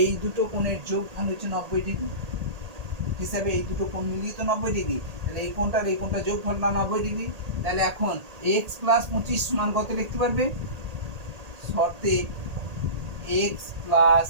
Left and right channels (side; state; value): left; late; 1.8 ms